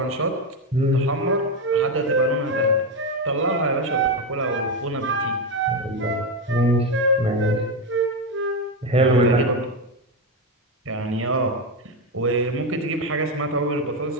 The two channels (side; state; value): both; normal; correlation 0.11